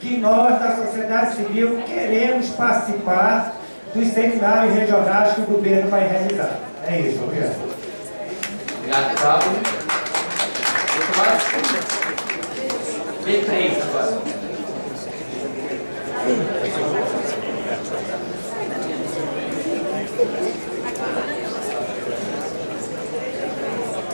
nós, da sociedade civil, queremos participar dos seminários regionais que o governo vai realizar. É isso, obrigado. Obrigado, Pablo. B3 agora.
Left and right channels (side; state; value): both; inverted; correlation -1.00